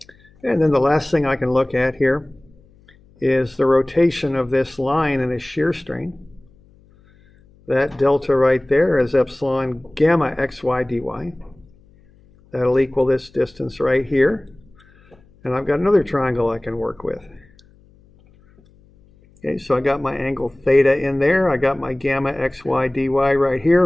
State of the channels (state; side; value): noise; left; hum, 29 dB below the sound